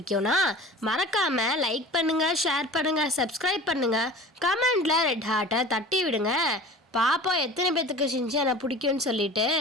மறக்காம லைக் பண்ணுங்க, ஷேர் பண்ணுங்க, சப்ஸ்கிரைப் பண்ணுங்க, கமெண்ட்ல ரெட் ஹார்ட்டை தட்டி விடுங்க. பாப்போம் எத்தனை பேத்துக்கு ஷின்சானை பிடிக்கும்னு சொல்லிட்டு.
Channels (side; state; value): both; normal; correlation 0.39